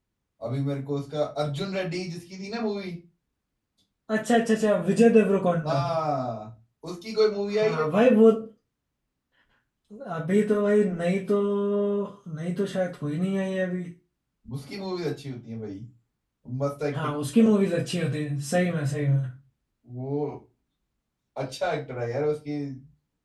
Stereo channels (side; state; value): both; identical; correlation 1.00